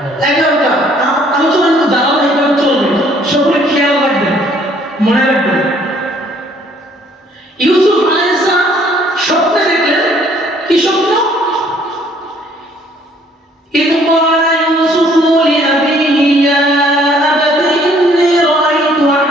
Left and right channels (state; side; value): normal; both; correlation 0.61